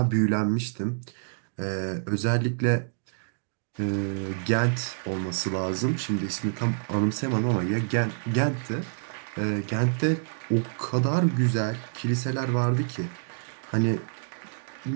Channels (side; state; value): left; silent; digital silence